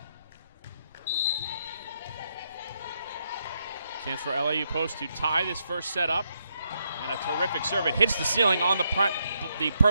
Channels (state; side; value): inverted; both; correlation -0.79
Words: Chance for LIU Post to tie this first set up. And a terrific serve. It hits the ceiling on the